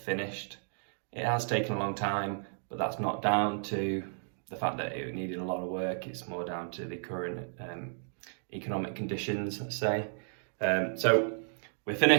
finished. It has taken a long time, but that's not down to the fact that it needed a lot of work. It's more down to the current economic conditions, let's say. So we're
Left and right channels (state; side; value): silent; left; digital silence